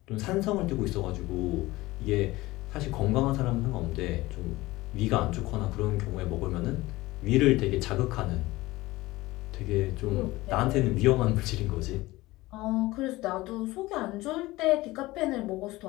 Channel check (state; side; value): quieter; right; 19.3 dB